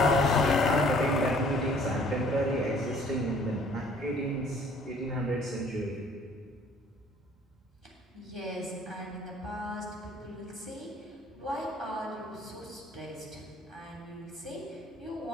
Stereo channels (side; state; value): both; normal; correlation 0.56